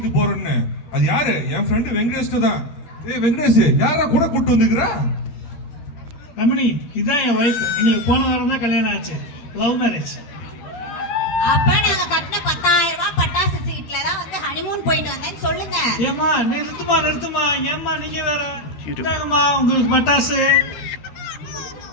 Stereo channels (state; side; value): late; right; 12 ms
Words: போறேன்னு, அது யாரு? என் ஃப்ரெண்டு வெங்கடேஷ் தான். ஏய் வெங்கடேஷ், யாரா கூட கூட்டு வந்துக்கிறா? ரமணி, இதான் என் வைஃப். எங்களுக்கு போன வாரம் தான் கல்யாணம் ஆச்சு. Love marriage. அப்ப நாங்க கட்டின 10,000 ரூபாய் பட்டாசு சீட்ல தான் வந்து ஹனிமூன் போயிட்டு வந்தேன்னு சொல்லுங்க. ஏமா நிறுத்துமா. ஏமா நீங்க வேற. இதாங்கம்மா உங்களுக்கு பட்டாசு.